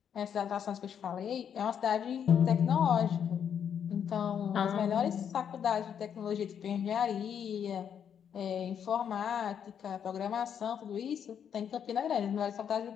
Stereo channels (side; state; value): right; quieter; 8.2 dB